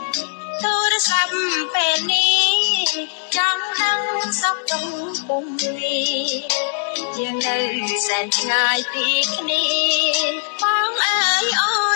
ទូរស័ព្ទពេលនេះចង់ដឹងសុខទុក្ខពុំនេះយើងនៅសែនឆ្ងាយពីគ្នាបងអើយអូ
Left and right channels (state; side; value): silent; right; 66 dB below the other